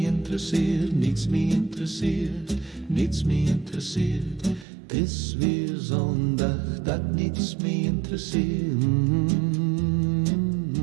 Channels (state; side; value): drops out; left; at 4.7 s